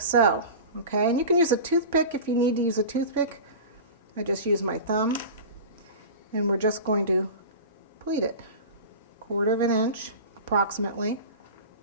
so. Okay, and you can use a toothpick if you need to use a toothpick. I just use my thumb, and we're just going to pleat it 1/4 inch approximately.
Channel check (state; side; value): inverted; both; correlation -0.32